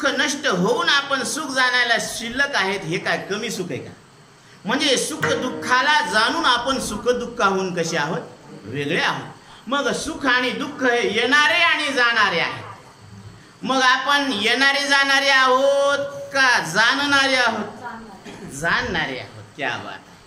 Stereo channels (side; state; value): both; identical; correlation 1.00